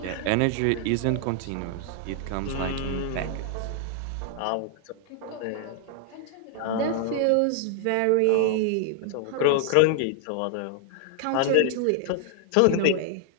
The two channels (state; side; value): different; both; correlation 0.00